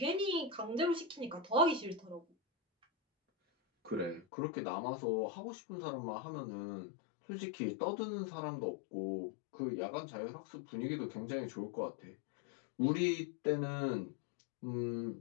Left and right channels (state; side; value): drops out; right; at 4.2 s